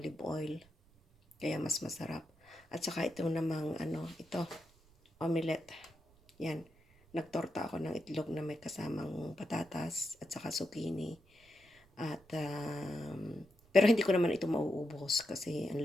oil. Kaya mas masarap. At saka ito namang ito, omelette. Yan. Nagtorta ako ng itlog na may kasamang patatas at saka zucchini. At pero hindi ko naman ito mauubos kasi ang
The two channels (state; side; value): noise; right; rumble, 29 dB below the sound